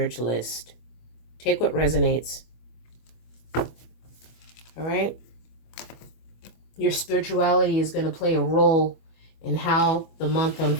Take what resonates. All right? Your spirituality is going to play a role in how the month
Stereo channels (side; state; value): right; late; 25 ms